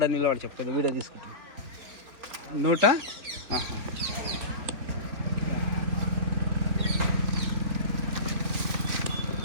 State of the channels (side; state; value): left; late; 2.9 ms